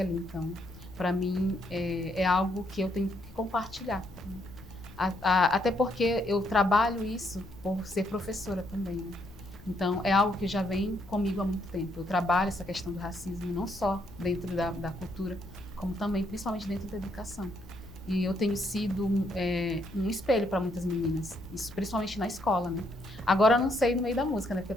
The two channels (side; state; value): left; noise; rumble, 19 dB below the sound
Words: Então, para mim, é algo que eu tenho que compartilhar, né? Até porque eu trabalho isso por ser professora também, né? Então, é algo que já vem comigo há muito tempo. Eu trabalho essa questão do racismo não só dentro da cultura, como também, principalmente dentro da educação. e eu tenho sido um espelho para muitas meninas, isso principalmente na escola, né? Agora eu não sei no meio da música, né? Porque eu